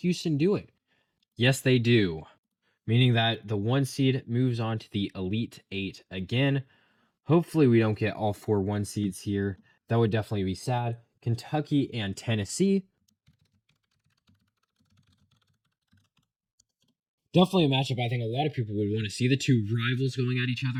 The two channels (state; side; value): identical; both; correlation 1.00